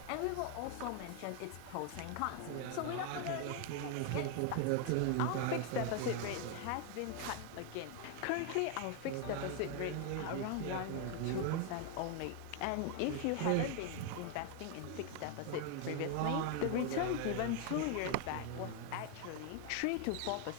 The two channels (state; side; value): different; both; correlation 0.01